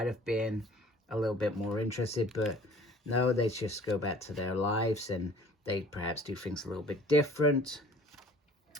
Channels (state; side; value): normal; both; correlation 0.50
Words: have been a little bit more interested, but no, they just go back to their lives, and they perhaps do things a little bit different,